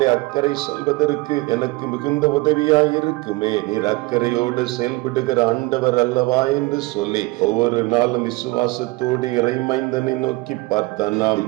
அக்கறை செல்வதற்கு எனக்கு மிகுந்த உதவியாய் இருக்குமே, நீர் அக்கறையோடு செயல்படுகிற ஆண்டவர் அல்லவா என்று சொல்லி ஒவ்வொரு நாளும் விசுவாசத்தோடு இறைமைந்தனை நோக்கி பார்த்தானா.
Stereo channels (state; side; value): quieter; left; 22.9 dB